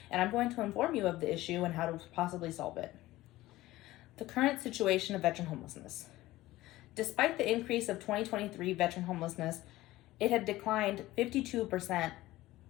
and I'm going to inform you of the issue and how to possibly solve it. The current situation of veteran homelessness. Despite the increase of 2023 veteran homelessness, it had declined 52%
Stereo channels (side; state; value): right; quieter; 17.1 dB